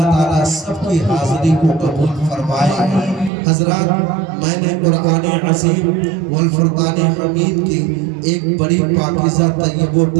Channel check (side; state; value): left; drops out; at 3.3 s